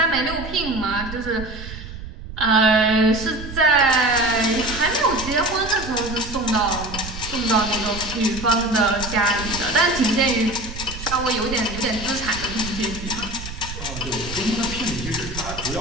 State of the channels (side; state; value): right; noise; rumble, 10 dB below the sound